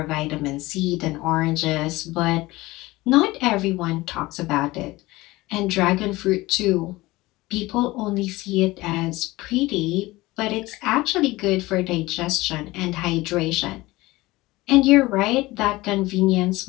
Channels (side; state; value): right; quieter; 19.9 dB